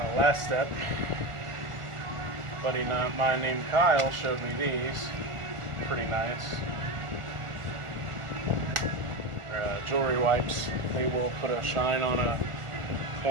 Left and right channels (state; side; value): late; left; 1.4 ms